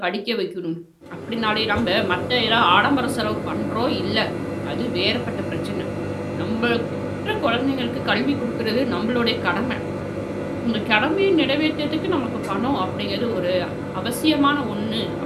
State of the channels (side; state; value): both; identical; correlation 1.00